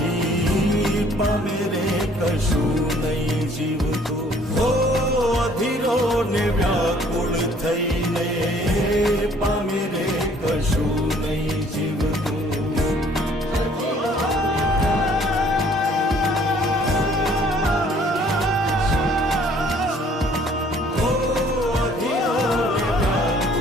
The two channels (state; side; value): normal; both; correlation 0.58